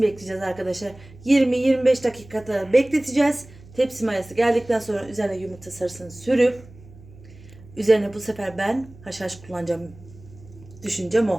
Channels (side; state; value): right; noise; hum, 21 dB below the sound